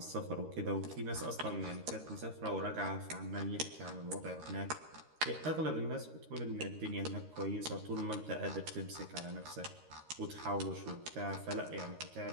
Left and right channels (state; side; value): late; left; 13 ms